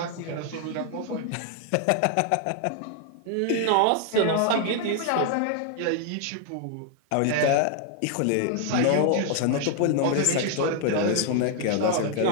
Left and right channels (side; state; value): both; different; correlation 0.00